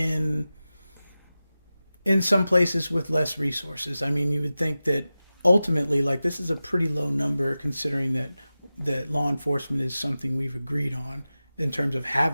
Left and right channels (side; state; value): both; inverted; correlation -0.95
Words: some places with less resources. I mean, you would think that ultimately, like, this is a pretty low number considering that law enforcement is something we've agreed on in terms of